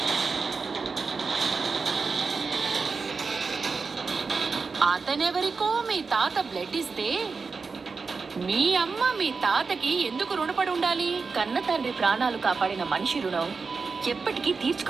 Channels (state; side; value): quieter; left; 4.7 dB